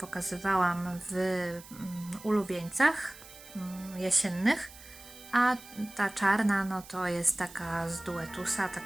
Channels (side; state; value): right; noise; hiss, 18 dB below the sound